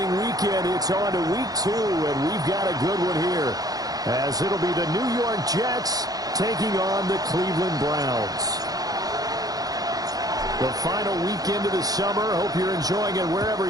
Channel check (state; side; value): late; left; 0.18 ms